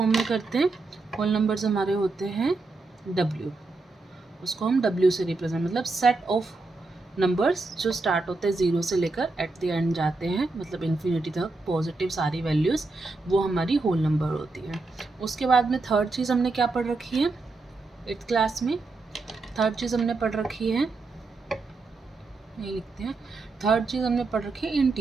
में करते हैं, होल नंबर्स हमारे होते हैं W, उसको हम W से रिप्रेजेंट, मतलब सेट ऑफ नंबर्स जो स्टार्ट होते हैं 0 से लेकर एट द एंड जाते हैं, मतलब इन्फिनिटी तक पॉजिटिव सारी वैल्यूज़, वो हमारी होल नंबर होती है। उसके बाद में थर्ड चीज़ हमने क्या पढ़ रखी है 8th क्लास में, थर्ड चीज़ हमने पढ़ रखी है, ये लिखते हैं, थर्ड चीज़ हमने पढ़ रखी है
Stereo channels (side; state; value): left; quieter; 3.5 dB